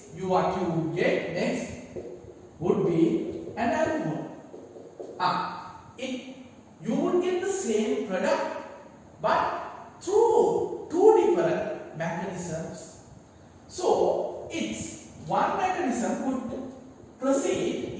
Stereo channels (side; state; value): both; identical; correlation 1.00